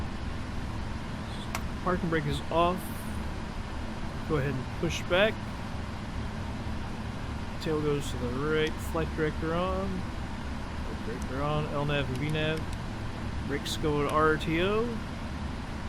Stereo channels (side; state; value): both; identical; correlation 1.00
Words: Parking brake is off. Go ahead and push back. Tail goes to the right. Flight director on. Flight director on. LNAV and VNAV. Brakes go to RTO.